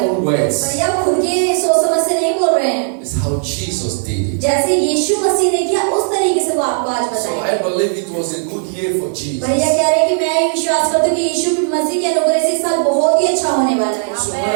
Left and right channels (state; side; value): silent; left; digital silence